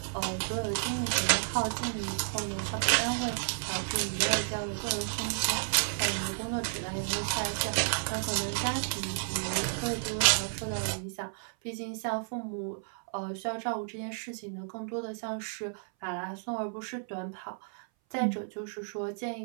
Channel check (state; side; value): silent; left; 56 dB below the other